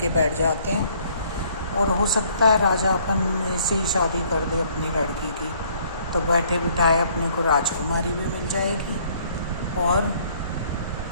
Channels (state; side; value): inverted; both; correlation -0.62